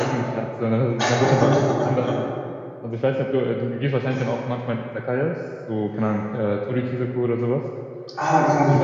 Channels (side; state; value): both; identical; correlation 1.00